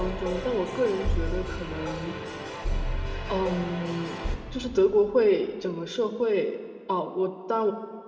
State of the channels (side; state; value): both; identical; correlation 1.00